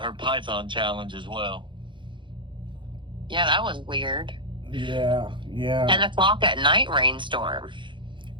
her Python challenge as well. Yeah, that was weird. Yeah. 10 o'clock at night rainstorm.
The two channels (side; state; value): left; late; 0.23 ms